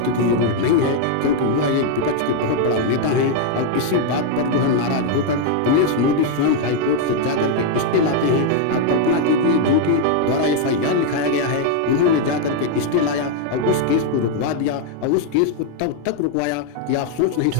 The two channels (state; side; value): different; both; correlation 0.00